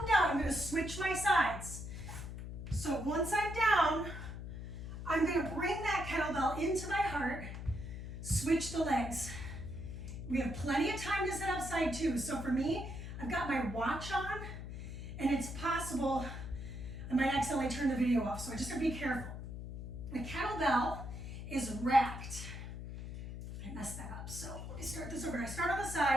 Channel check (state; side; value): noise; left; hum, 8 dB below the sound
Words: down, I'm gonna switch my sides. So once I'm down, I'm gonna bring that kettlebell into my heart, switch the legs. We have plenty of time to sit up side 2. So for me, I've got my watch on, and it's possible I might accidentally turn the video off, so I just gotta be careful. The kettlebell is racked. I messed that up, so let me start this over. I start on the